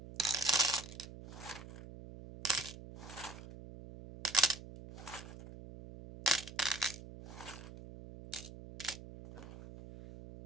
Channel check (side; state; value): right; noise; hum, 13 dB below the sound